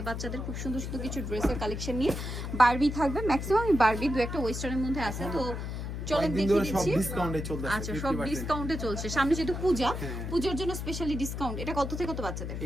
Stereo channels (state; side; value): noise; left; hum, 5 dB below the sound